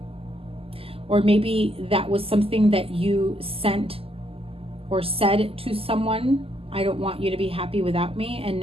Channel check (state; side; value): late; left; 0.28 ms